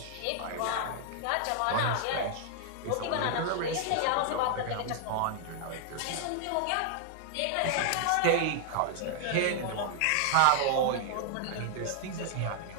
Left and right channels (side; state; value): both; different; correlation 0.00